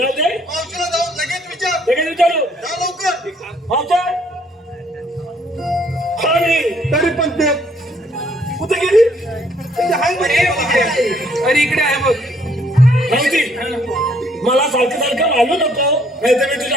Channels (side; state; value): both; normal; correlation 0.65